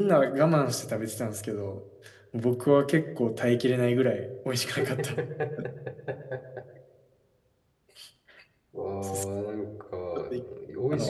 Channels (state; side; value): identical; both; correlation 1.00